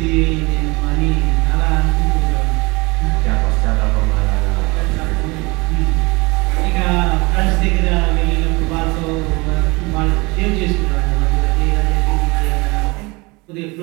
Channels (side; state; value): left; quieter; 25.3 dB